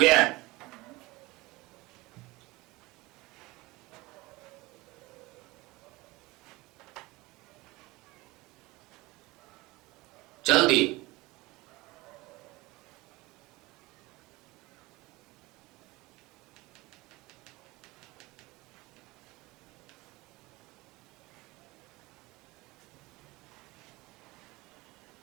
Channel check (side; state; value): left; quieter; 21.4 dB